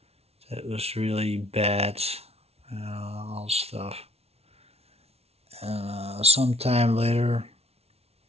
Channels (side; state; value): left; late; 0.30 ms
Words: that was really bad, all stuff. And sometime later,